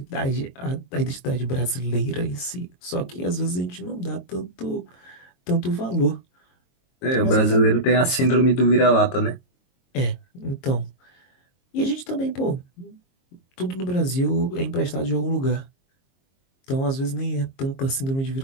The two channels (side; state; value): right; late; 22 ms